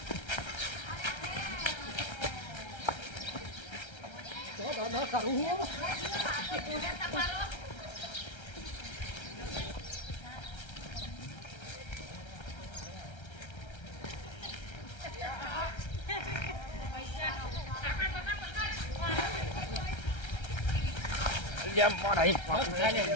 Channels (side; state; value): right; late; 1.3 ms